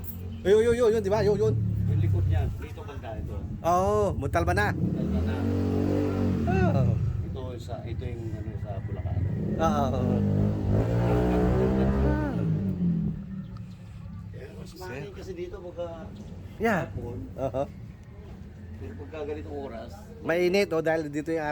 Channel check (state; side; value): identical; both; correlation 1.00